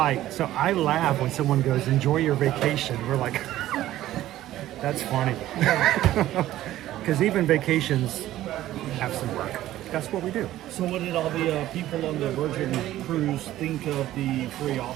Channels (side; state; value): left; quieter; 14.2 dB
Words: so I laugh when someone goes, enjoy your vacation. We're like, that's funny. Because even vacations have some work. That's what we do. So what did all the people on the Virgin cruise think of the free